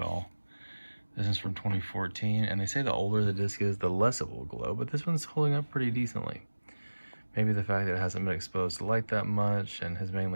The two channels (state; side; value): inverted; both; correlation -1.00